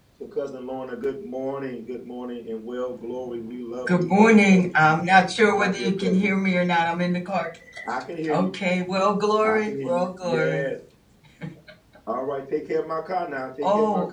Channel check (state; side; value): identical; both; correlation 1.00